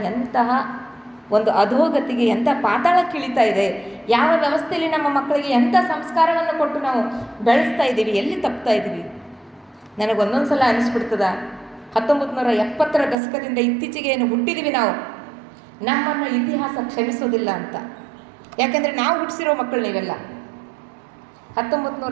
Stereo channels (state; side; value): drops out; left; at 13.2 s